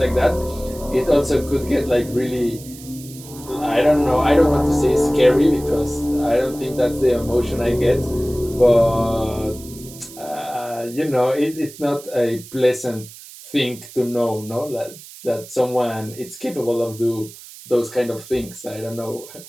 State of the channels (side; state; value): right; noise; hiss, 17 dB below the sound